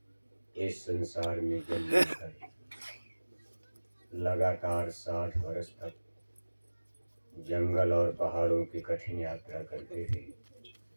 इस संसार में जन्म लेकर लगातार 60 वर्ष तक जंगल और पहाड़ों की कठिन यात्रा करते थे,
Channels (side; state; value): both; inverted; correlation -1.00